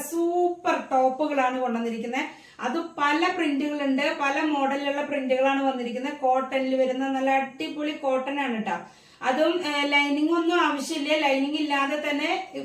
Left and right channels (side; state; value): both; identical; correlation 1.00